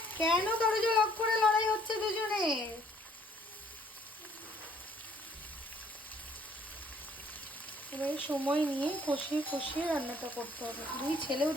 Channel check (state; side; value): normal; both; correlation 0.61